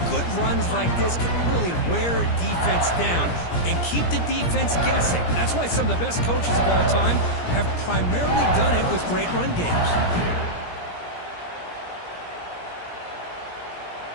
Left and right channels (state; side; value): late; right; 17 ms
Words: good runs like this can really wear defense down and keep the defense guessing. That's why some of the best coaches of all time have primarily done it with great run games.